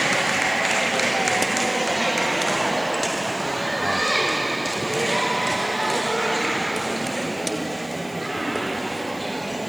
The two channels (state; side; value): noise; right; hiss, 23 dB below the sound